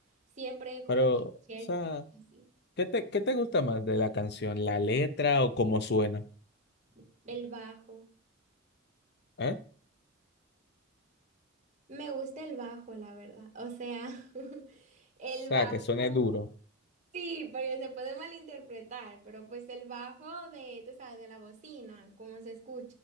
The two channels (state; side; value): normal; both; correlation -0.04